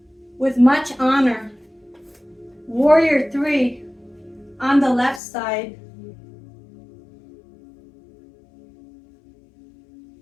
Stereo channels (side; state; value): right; drops out; at 5.2 s